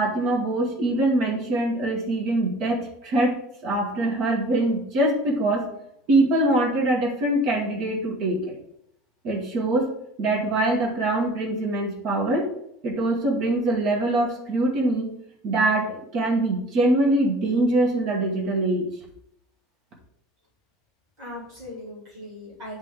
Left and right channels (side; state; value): both; normal; correlation 0.47